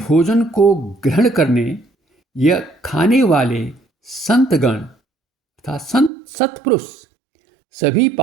को ग्रहण करने या खाने वाले संतगण तथा संत सत्पुरुष सभी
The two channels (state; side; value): drops out; left; at 6.1 s